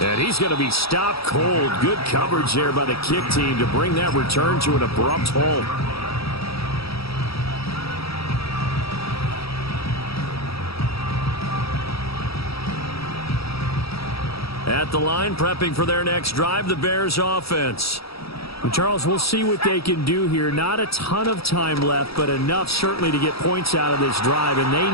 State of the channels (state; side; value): late; right; 0.77 ms